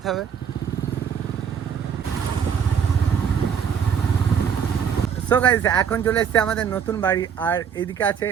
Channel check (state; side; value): quieter; left; 7.6 dB